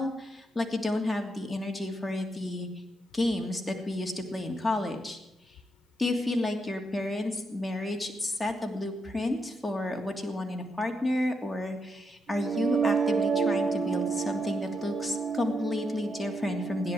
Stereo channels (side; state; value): both; normal; correlation 0.81